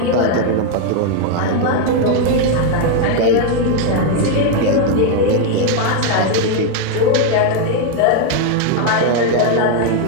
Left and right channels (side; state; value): both; different; correlation 0.01